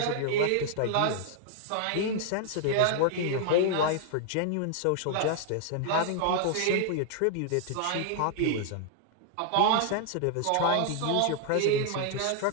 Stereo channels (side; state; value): both; different; correlation 0.00